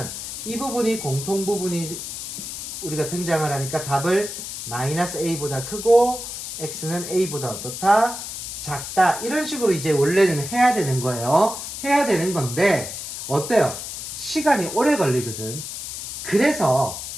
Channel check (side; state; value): left; noise; hiss, 7 dB below the sound